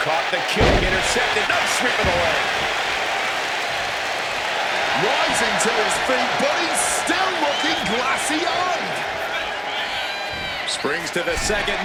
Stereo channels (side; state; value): both; identical; correlation 1.00